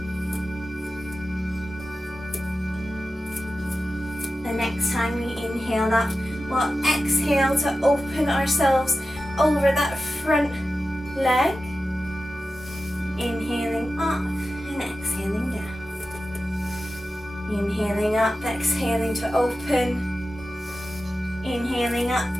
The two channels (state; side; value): normal; both; correlation 0.93